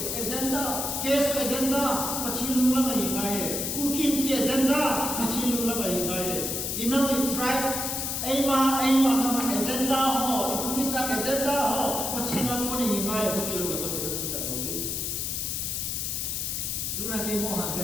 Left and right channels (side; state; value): left; noise; hiss, 2 dB below the sound